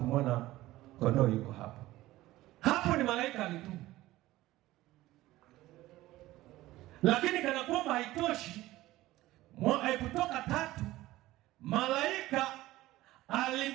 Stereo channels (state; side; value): quieter; left; 16.8 dB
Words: kondoo yuko hapo. Hapo ni malaika alitumwa. Lakini kana kwamba haitoshi, Kutoka 3, malaika